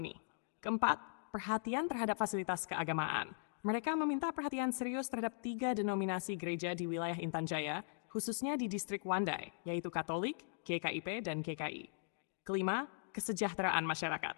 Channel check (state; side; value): silent; right; digital silence